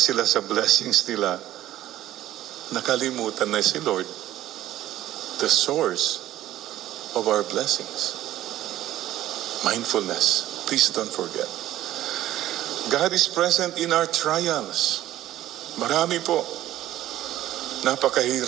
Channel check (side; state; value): left; quieter; 13.8 dB